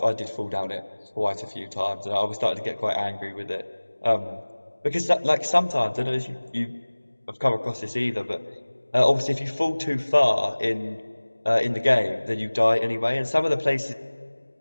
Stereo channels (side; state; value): both; inverted; correlation -1.00